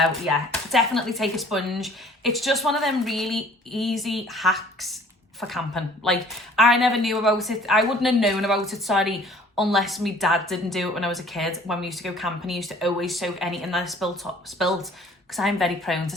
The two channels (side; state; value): both; normal; correlation 0.53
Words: yeah, definitely take a sponge. It's just one of them really easy hacks for camping. Like, I never knew about it. I wouldn't have known about it, sorry, unless my dad didn't do it when I was a kid. When we used to go camping, he used to always soak anything that I spilt, because I'm very prone to